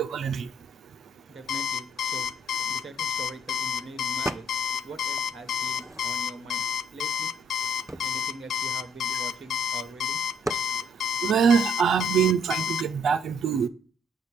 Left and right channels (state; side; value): normal; both; correlation 0.66